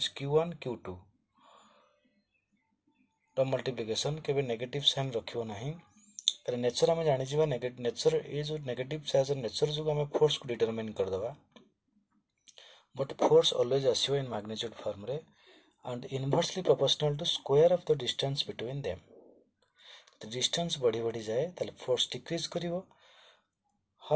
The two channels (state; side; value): identical; both; correlation 1.00